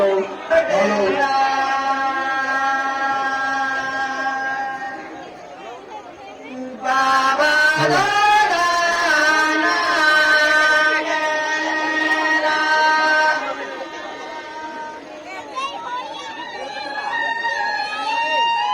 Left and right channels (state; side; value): identical; both; correlation 1.00